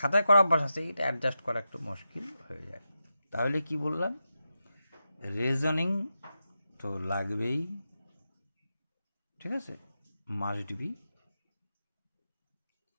করা অভ্যাস আছে, এটা অ্যাডজাস্ট করা একটু মুশকিল হয়ে যায়। তাহলে কি বললাম, রিজনিং তো লাগবেই, ঠিক আছে, মাস্ট বি।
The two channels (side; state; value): both; inverted; correlation -0.90